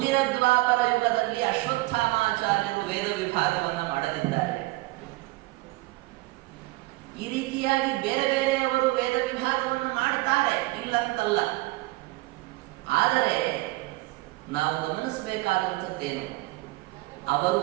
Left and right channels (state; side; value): quieter; left; 21.3 dB